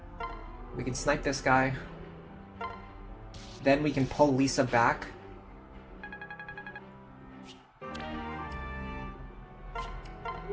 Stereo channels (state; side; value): identical; both; correlation 1.00